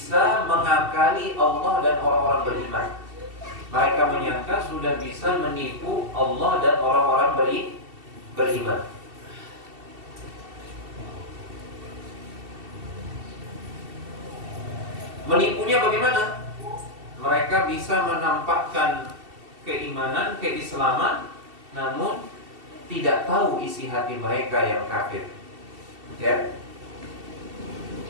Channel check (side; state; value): left; late; 2.7 ms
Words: mengakali Allah dan orang-orang beriman. Mereka menyangka sudah bisa menipu Allah dan orang-orang beriman. Menipunya bagaimana? Mereka bisa menampakkan keimanan, keislaman, namun tidak tahu isi hati mereka yang kafir. Ya.